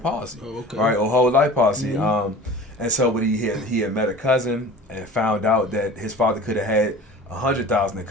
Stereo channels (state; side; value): normal; both; correlation 0.40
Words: right, or whole life policy. And so, but he had met a cousin and found out that his father could have had $100,000 in